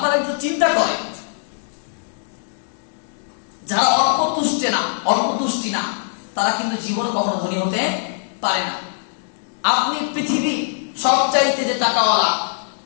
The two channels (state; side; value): silent; right; 65 dB below the other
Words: একটু চিন্তা করেন, যারা অল্প তুষ্টি না তারা কিন্তু জীবনে কখনো ধনী হতে পারে না। আপনি পৃথিবীর সবচাইতে যে টাকাওয়ালা,